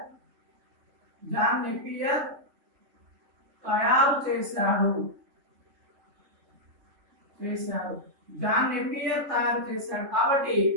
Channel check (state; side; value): late; left; 3.4 ms